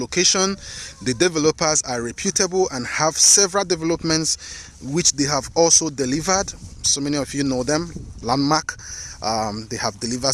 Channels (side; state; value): both; identical; correlation 1.00